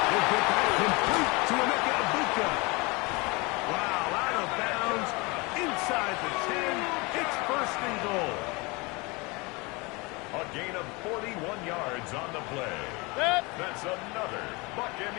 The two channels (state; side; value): quieter; right; 26.4 dB